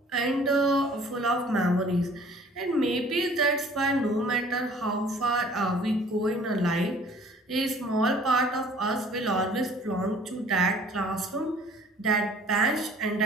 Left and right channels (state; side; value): normal; both; correlation 0.53